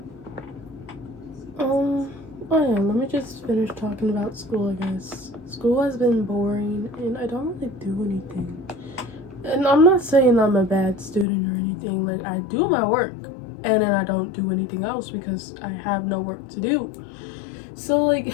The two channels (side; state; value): right; drops out; at 11.2 s